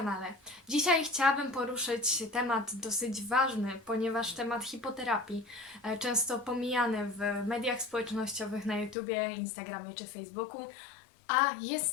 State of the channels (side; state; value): right; drops out; at 9.0 s